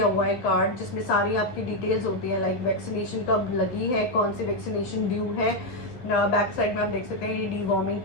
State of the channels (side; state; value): right; late; 12 ms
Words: हुआ है कार्ड, जिसमें सारी आपकी डिटेल्स होती है, लाइक वैक्सीनेशन कब लगी है, कौन सी वैक्सीनेशन ड्यू है। बैक साइड में आप देख सकते हैं ये डीवॉर्मिंग